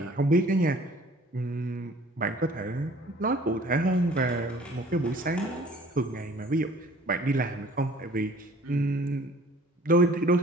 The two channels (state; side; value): normal; both; correlation 0.52